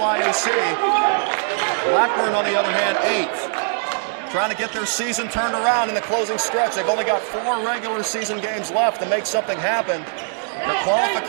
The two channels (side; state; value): left; silent; 65 dB below the other